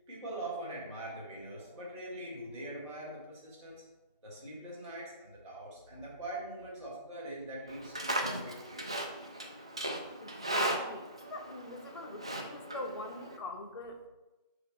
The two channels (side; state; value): both; inverted; correlation -0.31